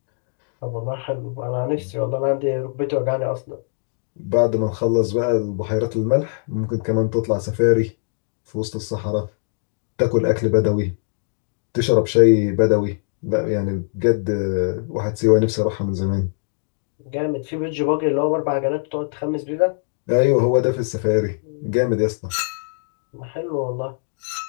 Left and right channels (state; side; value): silent; right; 64 dB below the other